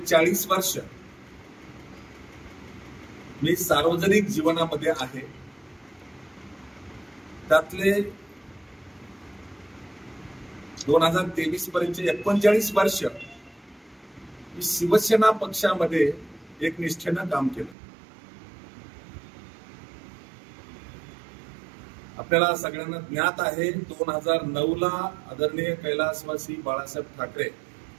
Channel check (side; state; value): left; drops out; at 17.8 s